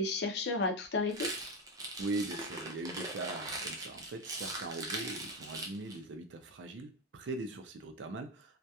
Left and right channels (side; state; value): both; normal; correlation 0.12